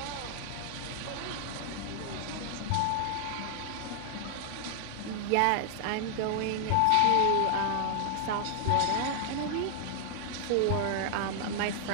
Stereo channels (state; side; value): different; both; correlation 0.00